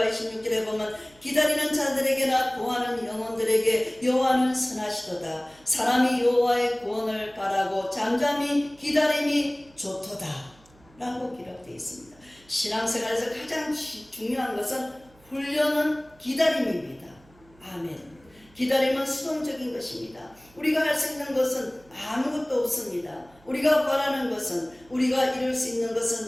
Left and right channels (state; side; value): noise; right; hum, 28 dB below the sound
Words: 26절에 보면 기다리는 자들에게나 구하는 영혼들에게 여호와는 선하시도다. 사람이 여호와의 구원을 바라고 잠잠히 기다림이 좋도다 라고 기록되어 있습니다. 신앙생활에서 가장 중요한 것은 훈련은 기다림입니다. 아멘. 기다림은 수동적인 것입니다. 우리가 할 수 있는 것은 아무것도 없습니다. 우리가 바라는 것은 우리가 이룰 수 있는